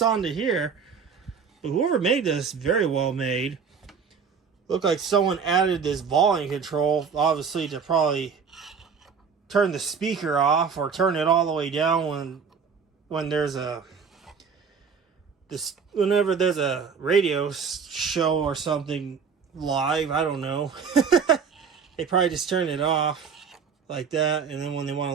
onto here. But whoever made this, very well made. Looked like someone added this volume control, obviously to probably turn the speaker off or turn it all the way down when there's a whenever there's a radio show or something live. I don't know. They probably just turn it off like that, and then when they want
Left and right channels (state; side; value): quieter; left; 6.2 dB